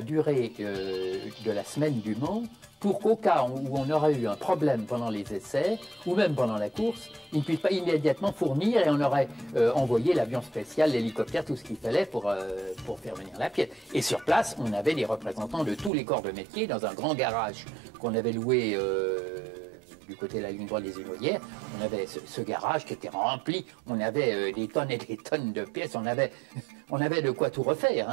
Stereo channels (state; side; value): drops out; left; at 15.9 s